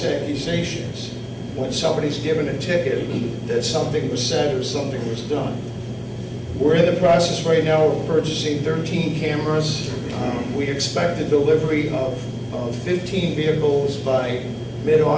accusations. When somebody's given a ticket that something was said or something was done. We're in the process right now of purchasing 13 cameras. We expect the delivery of 15 vehicles by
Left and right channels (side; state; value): both; identical; correlation 1.00